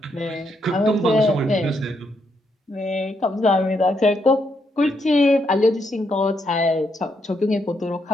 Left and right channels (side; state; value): both; normal; correlation 0.78